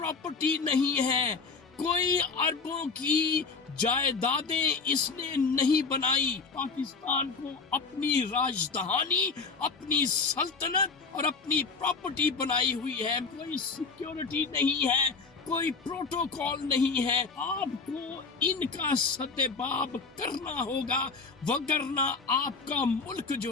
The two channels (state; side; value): quieter; right; 4.6 dB